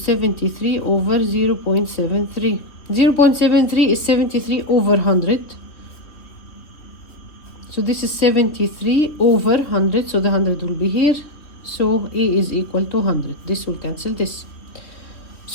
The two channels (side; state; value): right; late; 3.0 ms